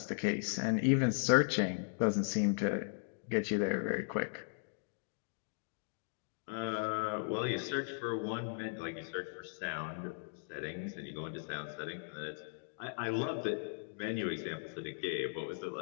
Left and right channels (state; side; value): silent; right; digital silence